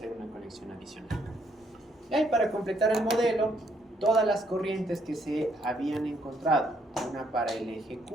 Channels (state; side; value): normal; both; correlation 0.70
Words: una conexión adicional. Ya, y para completar el modelo, todas las corrientes que se habían encontrado, una para el eje